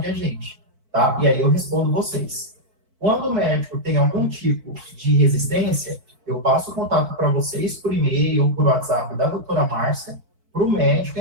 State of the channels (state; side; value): late; left; 4.5 ms